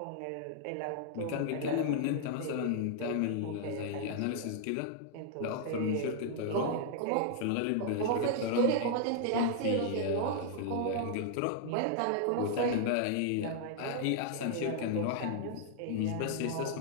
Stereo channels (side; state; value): both; different; correlation -0.01